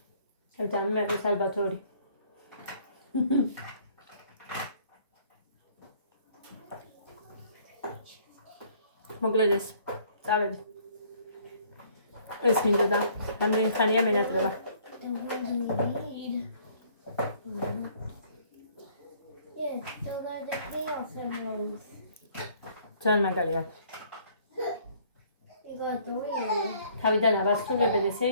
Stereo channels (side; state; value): both; inverted; correlation -0.59